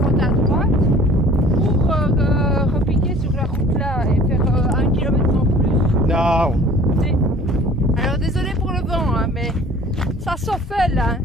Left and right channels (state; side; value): normal; both; correlation 0.49